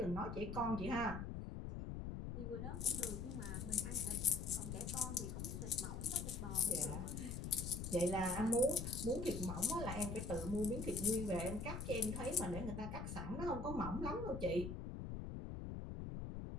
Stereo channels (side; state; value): left; noise; rumble, 5 dB below the sound